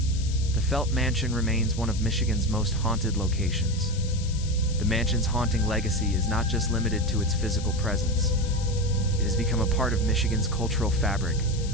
the Felt Mansion remains one of Michigan's most haunted locations. The mansion's haunting legacy is not just limited to its physical presence. It has become a part of Michigan's cultural fabric,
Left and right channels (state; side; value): noise; left; hiss, 14 dB below the sound